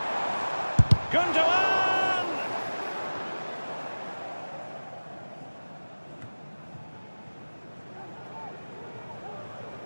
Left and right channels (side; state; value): both; inverted; correlation -1.00